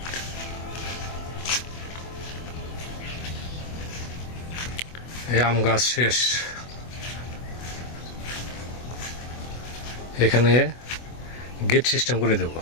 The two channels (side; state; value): right; late; 24 ms